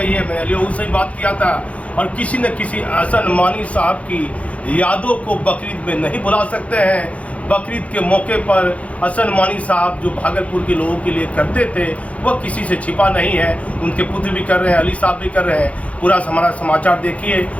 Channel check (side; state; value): right; late; 0.065 ms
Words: है, मैंने अली से ही बात किया था, और किसी न किसी हसन मानी साहब की यादों को बकरीद में नहीं भुला सकते हैं। बकरीद के मौके पर हसन मानी साहब जो भागलपुर के लोगों के लिए करते थे वह किसी से छिपा नहीं है, उनके पुत्र भी कर रहे हैं, अली साहब भी कर रहे हैं। पूरा हमारा समाचार देखिए